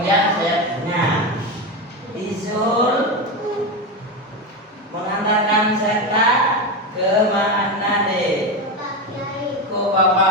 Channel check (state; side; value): normal; both; correlation 0.16